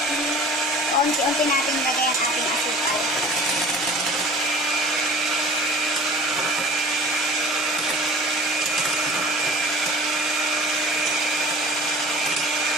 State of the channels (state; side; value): normal; both; correlation 0.43